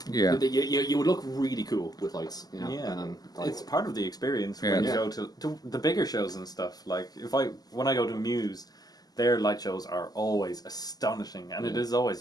Yeah. You would look really cool with lights. You know? Yeah. And, It's part of the experience when you go to the bigger shows and stuff. Like when I go to Muse, their light shows are always astonishing, and it is always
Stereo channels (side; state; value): right; late; 0.19 ms